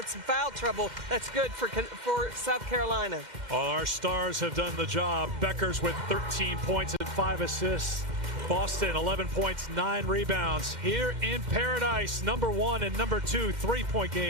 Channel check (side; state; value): left; late; 2.1 ms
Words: some foul trouble, that's good for South Carolina. All our stars have done the job. Beckers with 13 points and 5 assists. Boston, 11 points, 9 rebounds. Here in Paradise, number 1 and number 2 3-point